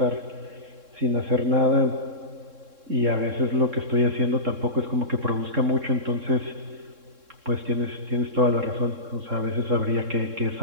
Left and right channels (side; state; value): left; late; 3.7 ms